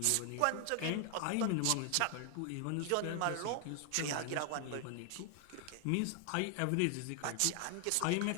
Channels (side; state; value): both; different; correlation 0.00